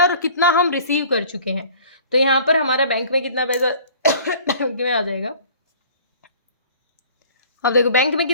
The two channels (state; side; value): inverted; both; correlation -0.49